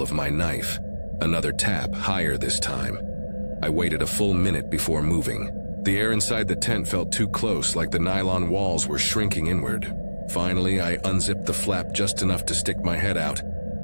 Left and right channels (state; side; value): inverted; both; correlation -1.00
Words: of my knife. Another tap, higher this time. I waited a full minute before moving. The air inside the tent felt too close, like the nylon walls were shrinking inward. Finally, I unzipped the flap just enough to stick my head out,